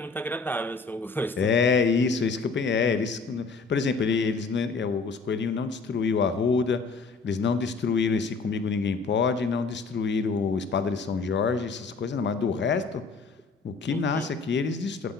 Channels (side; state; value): right; quieter; 4.5 dB